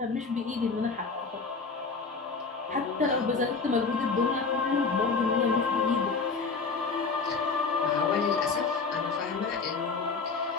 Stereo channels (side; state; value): right; quieter; 4.6 dB